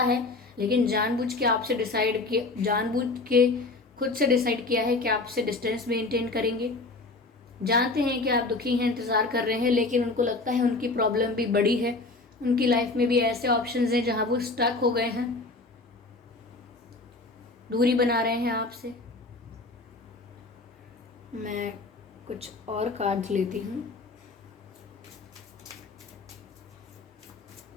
है, लेकिन जानबूझ के खुद से डिसाइड किया है कि आपसे डिस्टेंस मेंटेन करेंगे। जानते हैं कि आप दुखी हैं, इंतज़ार कर रहे हैं, लेकिन उनको लगता है उनकी प्रॉब्लम भी बड़ी है, उनकी लाइफ में भी ऐसे ऑप्शंस हैं जहां वो स्टक हो गए हैं, दूरी बना रहे हैं आपसे। मैं कुछ और कार्ड्स लेती हूँ।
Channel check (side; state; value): right; quieter; 3.4 dB